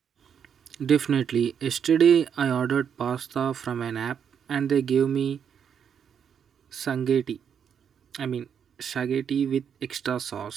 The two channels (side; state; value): left; quieter; 7.8 dB